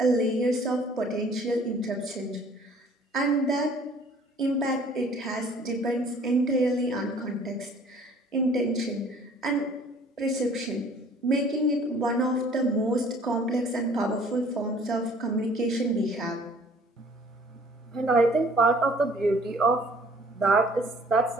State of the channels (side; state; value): both; normal; correlation 0.54